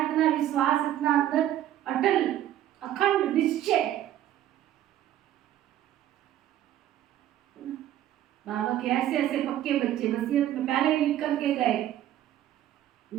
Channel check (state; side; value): quieter; left; 12.3 dB